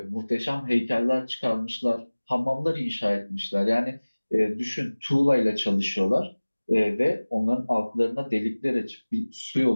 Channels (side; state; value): both; inverted; correlation -1.00